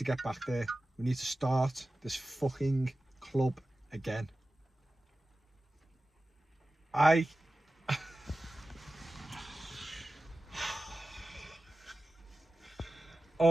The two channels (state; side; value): normal; both; correlation 0.95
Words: get back there. We need to start this fucking club again.